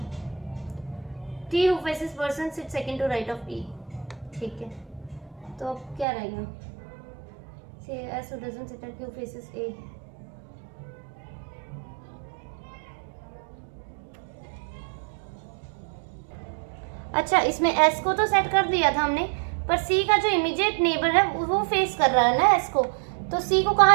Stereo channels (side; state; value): left; drops out; at 6.1 s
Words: T who faces person sit second to right of E, ठीक है। तो अब क्या रहेगा, से S who doesn't sit at Q faces A, अच्छा इसमें एस को तो सेट कर दिया था हमने, पर सी का जो इमीडिएट नेबर है वो फेस कर रहा है ना एस को, तो सी को